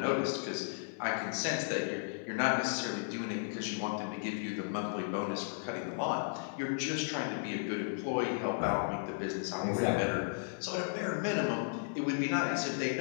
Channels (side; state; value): right; silent; 55 dB below the other